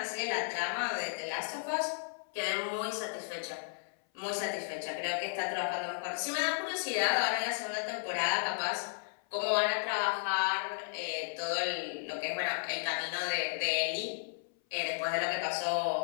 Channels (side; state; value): right; silent; 55 dB below the other